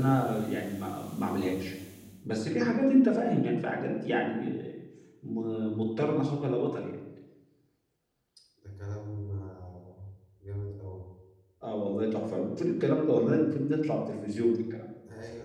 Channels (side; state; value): both; identical; correlation 1.00